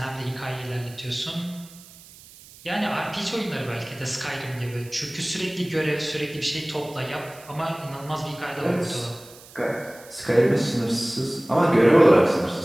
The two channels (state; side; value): noise; right; hiss, 21 dB below the sound